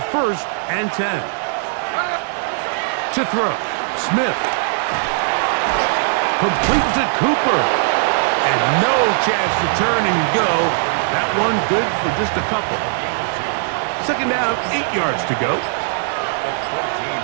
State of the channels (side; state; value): left; silent; digital silence